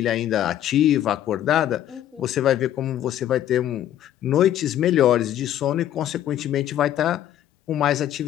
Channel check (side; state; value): right; quieter; 11.7 dB